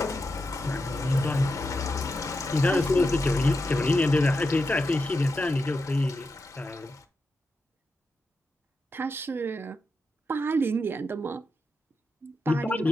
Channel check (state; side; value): normal; both; correlation 0.87